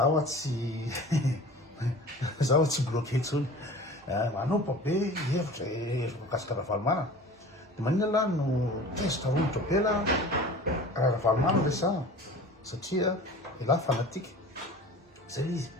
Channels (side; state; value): both; normal; correlation 0.41